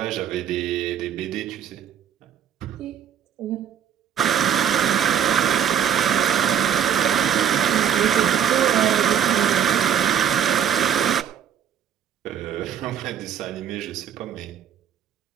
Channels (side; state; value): left; quieter; 8.9 dB